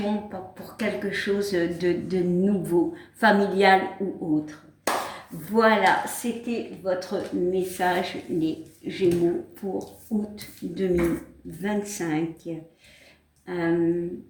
pour quelque chose de nouveau, familial ou autre. Voilà, c'était votre message, les Gémeaux, pour août 2025.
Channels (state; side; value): identical; both; correlation 1.00